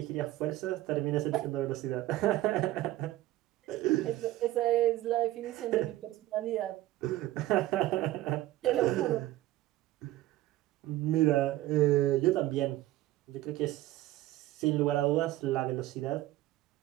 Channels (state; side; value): quieter; left; 15.8 dB